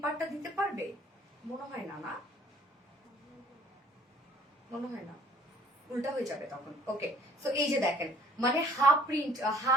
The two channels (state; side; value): normal; both; correlation 0.55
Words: পার্টটা দিতে পারবে, মনে হয় না, না মনে হয় না, উল্টা হয়ে যাবে তখন। ওকে, সো এই যে দেখেন মানে হাফ প্রিন্ট